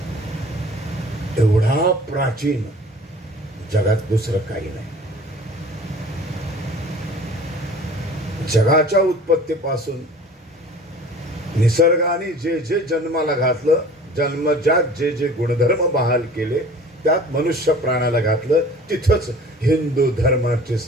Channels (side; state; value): both; normal; correlation 0.45